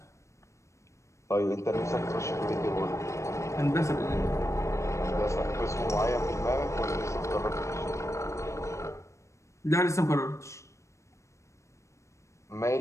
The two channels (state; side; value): late; right; 0.14 ms